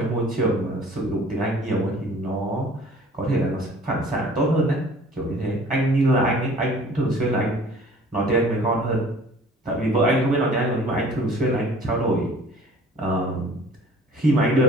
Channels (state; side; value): normal; both; correlation 0.50